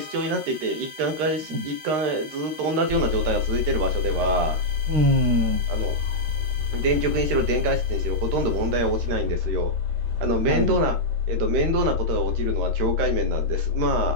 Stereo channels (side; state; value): left; late; 13 ms